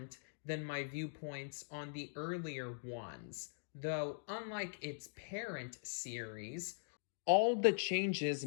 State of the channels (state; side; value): silent; right; digital silence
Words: than my viewpoints on the earlier ones, though unlike its parent series, all the changes